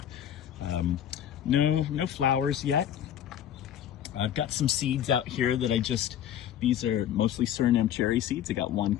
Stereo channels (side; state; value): right; quieter; 10.4 dB